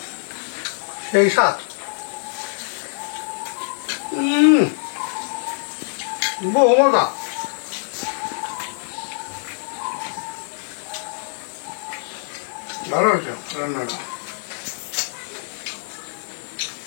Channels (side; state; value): right; silent; 63 dB below the other